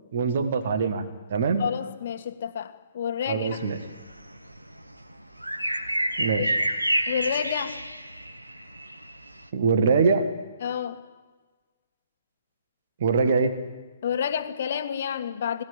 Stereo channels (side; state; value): both; inverted; correlation -0.68